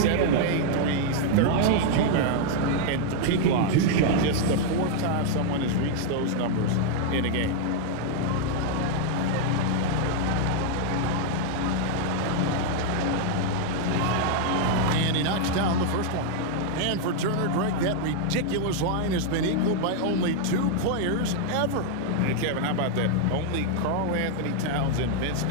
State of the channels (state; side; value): different; both; correlation 0.00